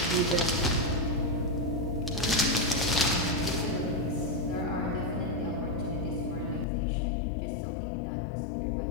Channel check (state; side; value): drops out; right; at 6.7 s